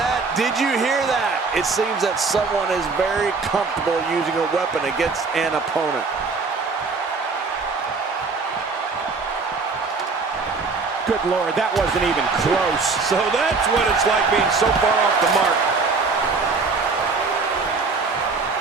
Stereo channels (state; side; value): quieter; left; 4.4 dB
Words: Did you hear that? It seems that someone is very comfortable using a weapon against an opponent. Good Lord, that wasn't even close. So that's what it's like being so far off the mark.